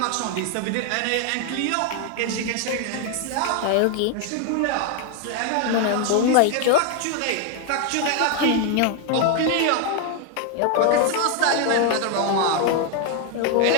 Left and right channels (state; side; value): different; both; correlation 0.01